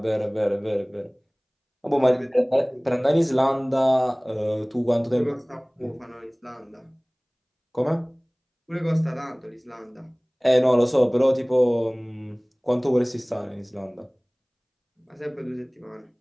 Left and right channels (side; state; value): both; identical; correlation 1.00